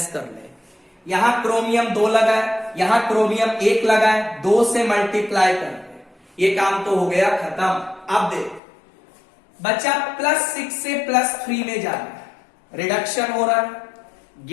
कर ले। यहां क्रोमियम 2 लगा है, यहां क्रोमियम 1 लगा है, 2 से मल्टीप्लाई कर दे, ये काम तो हो गया खत्म। अब देख बच्चा, +6 से +3 में जाना है, रिडक्शन हो रहा है,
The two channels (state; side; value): drops out; right; at 8.6 s